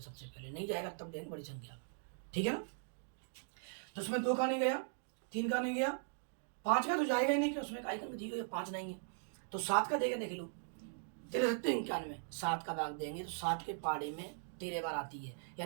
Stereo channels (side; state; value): left; silent; digital silence